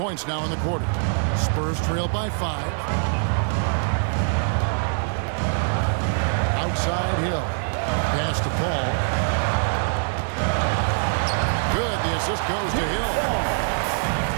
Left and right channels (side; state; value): left; silent; digital silence